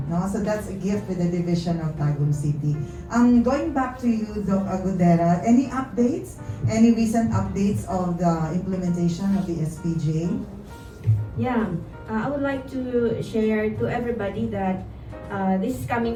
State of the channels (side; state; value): both; identical; correlation 1.00